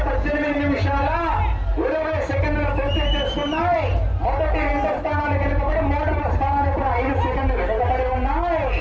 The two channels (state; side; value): identical; both; correlation 1.00